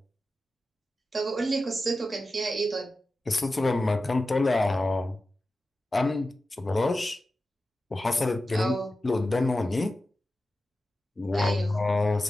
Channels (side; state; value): both; normal; correlation 0.93